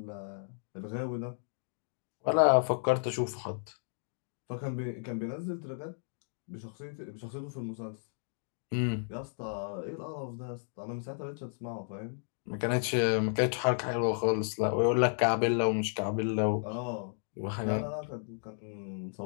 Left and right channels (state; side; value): silent; right; digital silence